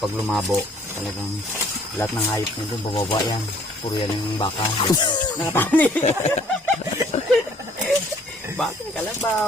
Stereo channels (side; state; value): both; normal; correlation 0.60